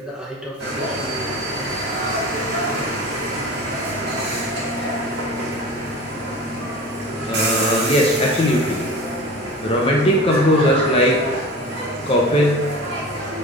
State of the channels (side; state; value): both; normal; correlation 0.34